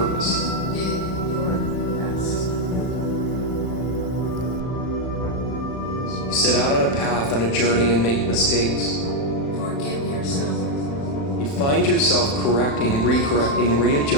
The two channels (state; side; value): late; right; 36 ms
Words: You did your best. You set out on a path, on a journey, and make mistakes. Forgive yourself. You find yourself correcting, recorrecting,